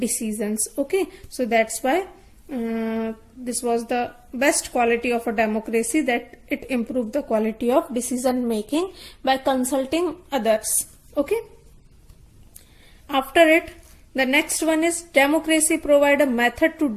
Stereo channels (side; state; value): both; identical; correlation 1.00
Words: Okay, so that's why this was the best quality of a democracy, that it improved the quality of decision making by consulting others. Okay, after it, the next one is, democracy provide a method to